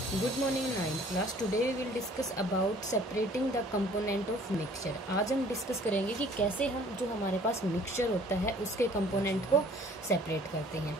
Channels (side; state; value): both; normal; correlation 0.54